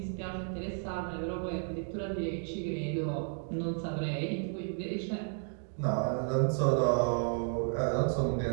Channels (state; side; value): silent; left; 56 dB below the other